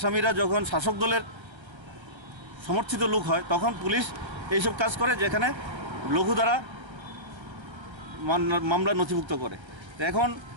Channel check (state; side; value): late; left; 1.3 ms